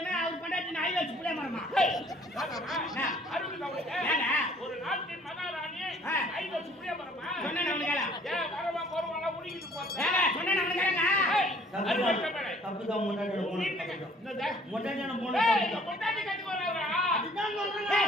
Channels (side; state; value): both; normal; correlation 0.57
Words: அவர் பொண்டாட்டி நாய் வச்சு புள்ள மரமா. ஒரு நாட்டின் மகாராணி ஐந்து சுப்ரிய மரமா சொன்ன நம்மளுக்கு ஏன் வரவா போறவாளா உடிக்கிட்டு போறேன் சொன்ன நம்மளுக்கு தப்புதான் பொண்டாட்டியோட போன. பொண்டாட்டியான போன. பொண்டாட்டி கட்டி வர்றா அதுதான்